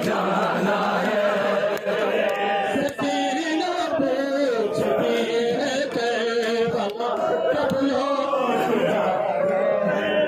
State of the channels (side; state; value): both; identical; correlation 1.00